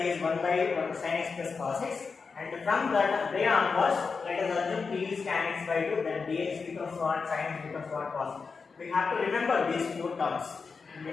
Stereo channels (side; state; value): right; quieter; 4.9 dB